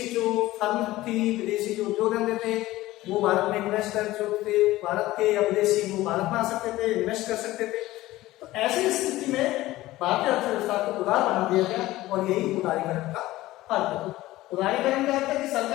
जो फर्म थी, विदेशी जो उद्योग धंधे थे वो भारत में इन्वेस्टर जो थे भारत के या विदेशी वो भारत में आ सकते थे, इन्वेस्ट कर सकते थे। तो ऐसी स्थिति में भारतीय अर्थव्यवस्था को उदार बना दिया गया और यही उदारीकरण का अर्थ है। उदारीकरण का अर्थ है कि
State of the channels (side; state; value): right; quieter; 17.0 dB